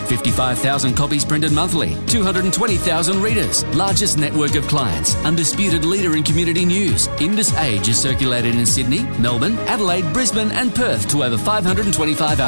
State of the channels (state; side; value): inverted; both; correlation -1.00